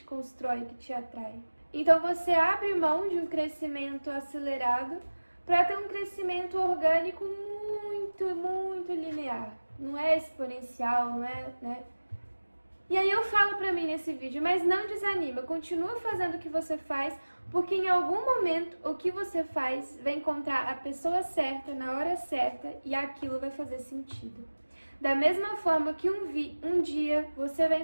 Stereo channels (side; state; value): both; inverted; correlation -1.00